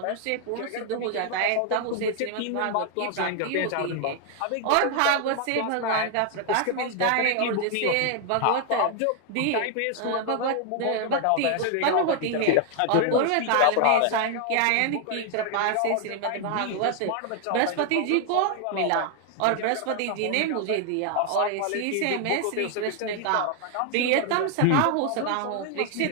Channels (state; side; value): different; both; correlation 0.00